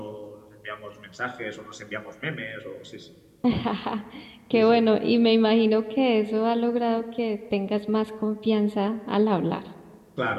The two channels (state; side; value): identical; both; correlation 1.00